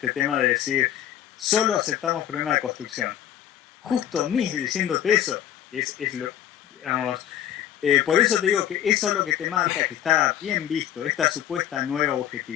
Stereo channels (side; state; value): right; quieter; 11.0 dB